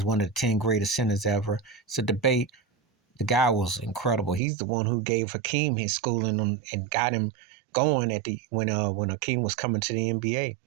one of the 10 greatest centers ever. It's a debate. The guy was incredible. He's the one who gave Hakeem his schooling and got him going at the when Hakeem was coming to the NBA.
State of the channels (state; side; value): drops out; left; at 4.4 s